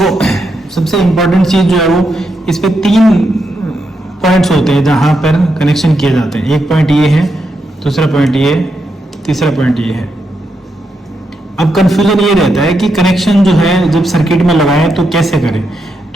सबसे इंपॉर्टेंट चीज जो है वो इस पे 3 पॉइंट्स होते हैं जहां पर कनेक्शन किए जाते हैं। एक पॉइंट ये है, दूसरा पॉइंट ये, तीसरा पॉइंट ये है। अब कंफ्यूजन ये रहता है कि कनेक्शन जो है जब सर्किट में लगाएं तो कैसे करें।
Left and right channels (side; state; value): both; normal; correlation 0.83